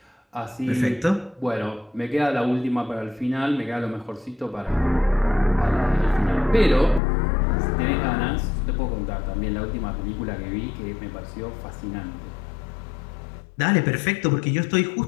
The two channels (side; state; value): right; drops out; at 7.0 s